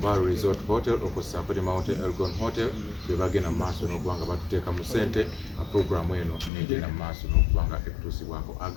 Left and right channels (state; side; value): drops out; right; at 6.5 s